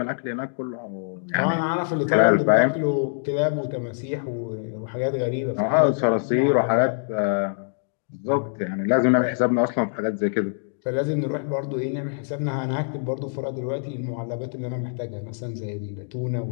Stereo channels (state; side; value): silent; right; digital silence